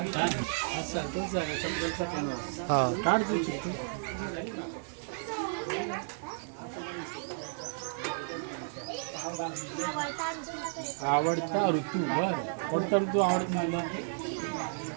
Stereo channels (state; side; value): silent; left; digital silence